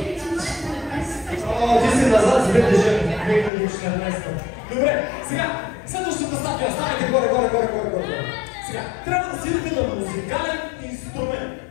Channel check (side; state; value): right; drops out; at 3.5 s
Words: Ти си назад с 2014. Добре, сега, следващата статия, ставайте горе. Сега, трябва да седите на музикален